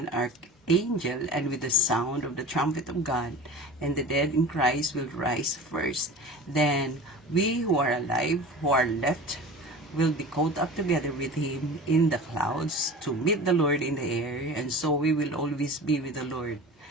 archangel, and with the sound of the trumpet of God, and the dead in Christ will rise first. Then we who are alive, who are left, will be caught up together with him in the clouds to meet the Lord in the air, and so we will always be with the Lord.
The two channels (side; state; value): both; normal; correlation 0.36